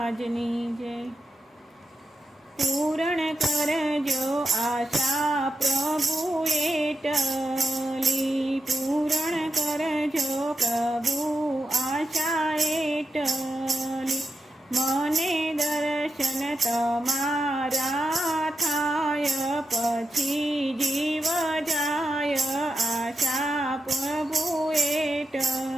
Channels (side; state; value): both; normal; correlation 0.87